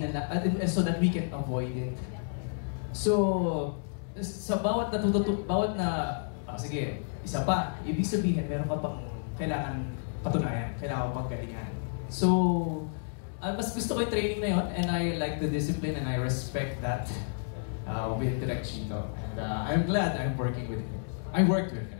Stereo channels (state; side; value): silent; right; digital silence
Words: so that we can avoid it. So, sa bawat sige, isa pa, ibig sabihin, meron ka pang kailangan patunayan, kailangan pang galingan. So, mas gusto ko yung training na yun, and I like the discipline and I respect that with Direk Chito. And I'm glad I'm working with him. I worked with